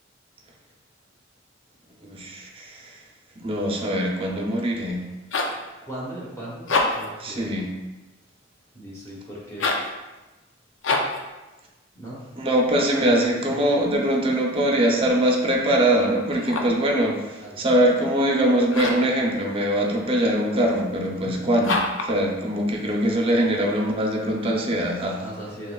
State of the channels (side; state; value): both; normal; correlation 0.37